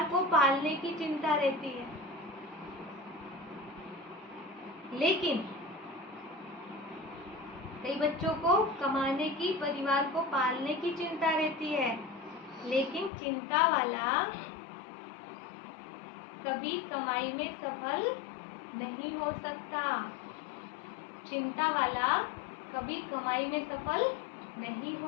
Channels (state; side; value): drops out; right; at 13.1 s